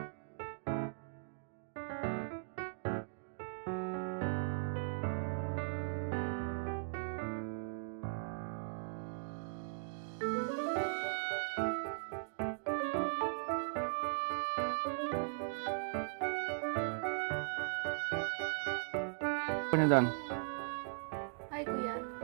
Ano doon? Hi, kuya.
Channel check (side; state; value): left; silent; digital silence